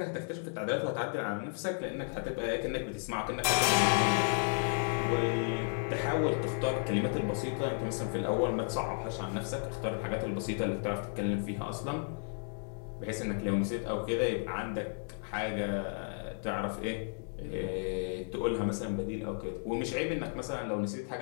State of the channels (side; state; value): right; silent; 55 dB below the other